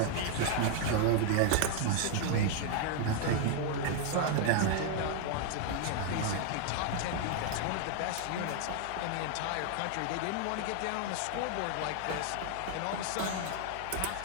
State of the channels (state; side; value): different; both; correlation 0.00